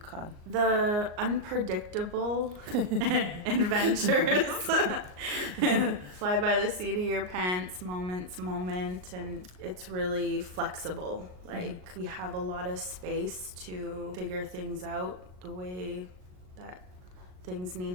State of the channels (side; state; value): left; late; 38 ms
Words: The unpredictable adventures. Fly by the seat of your pants, moment, and it's really flexible. Like, we have a lot of space to figure things out the way that things